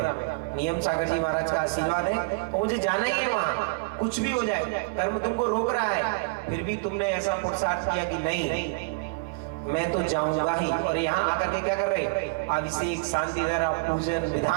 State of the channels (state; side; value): quieter; left; 31.0 dB